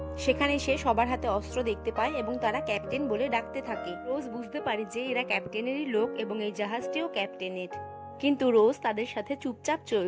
সেখানে সে সবার হাতে অস্ত্র দেখতে পায় এবং তারা ক্যাপ্টেন বলে ডাকতে থাকে। রোজ বুঝতে পারে যে এরা ক্যাপ্টেনেরই লোক এবং এই জাহাজটিও ক্যাপ্টেনের। কিন্তু রোজ তাদের সাথে চুপচাপ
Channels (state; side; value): identical; both; correlation 1.00